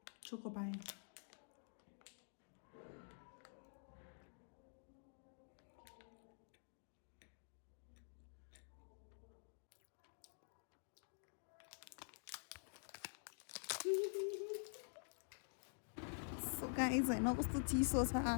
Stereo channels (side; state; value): right; silent; digital silence